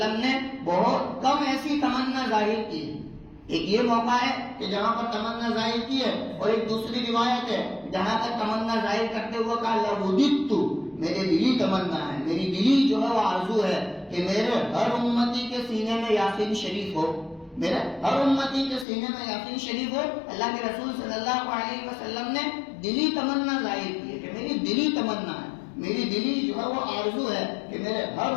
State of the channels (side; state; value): right; drops out; at 18.9 s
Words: نے بہت کم ایسی تمنا ظاہر کی۔ ایک یہ موقع ہے کہ جہاں پر تمنا ظاہر کی ہے، اور ایک دوسری روایت ہے جہاں پر تمنا ظاہر کرتے ہوئے کہا لوددت، میرے دلی تمنا ہے، میری دلی جو ہے وہ آرزو ہے کہ میرے ہر امتی کے سینے میں یاسین شریف ہو، میرے ہر امتی کے سینے میں یاسین شریف ہو۔ اللہ کے رسول صلی اللہ علیہ وسلم نے دلی تمنا ظاہر کی ہے کہ میری دلی تمنا ہے، میری دلی جو ہے وہ آرزو ہے کہ میرے ہر